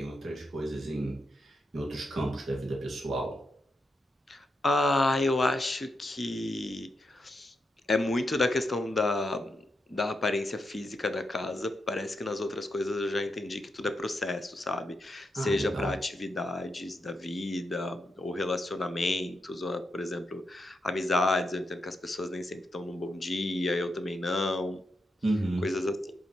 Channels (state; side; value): normal; both; correlation 0.84